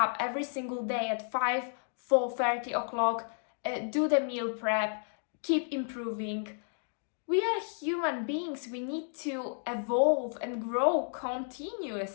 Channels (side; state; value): right; silent; digital silence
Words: every single day at 4:30 o'clock, do the meal prep, keep improving. We are human beings. We need to evolve and grow